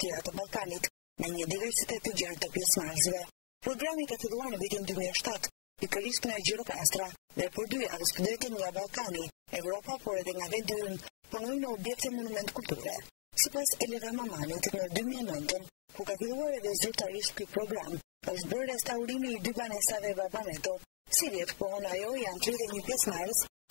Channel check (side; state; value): right; silent; digital silence